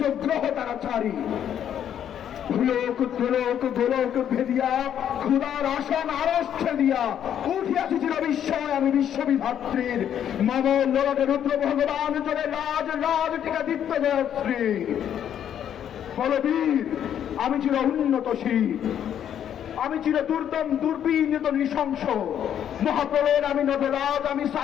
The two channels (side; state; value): right; quieter; 9.6 dB